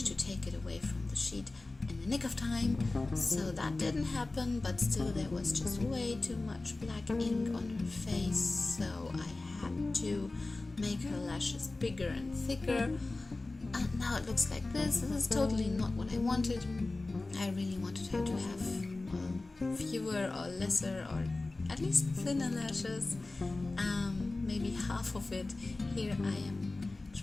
to take it away from the sheet in the nick of time, so that didn't happen, but still there was just way too much black ink on her face, so I had to make her lashes bigger and thicker. And now it looks like this. This is totally not what I wanted. I really wanted her to have, well, fewer or lesser or at least thinner lashes. Maybe half of it. Here I am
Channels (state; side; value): quieter; right; 3.2 dB